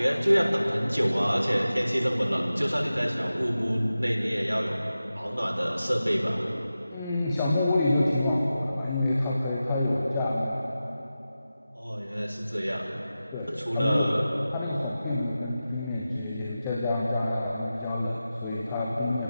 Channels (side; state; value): both; inverted; correlation -0.94